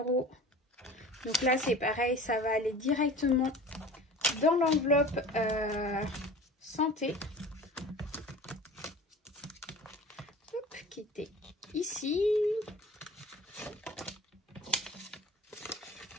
Donc là, c'est pareil, ça va aller directement dans l'enveloppe santé. Hop, qui était ici.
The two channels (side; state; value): both; normal; correlation 0.40